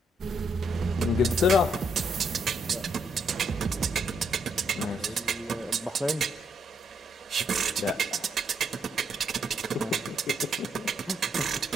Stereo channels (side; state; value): both; normal; correlation 0.75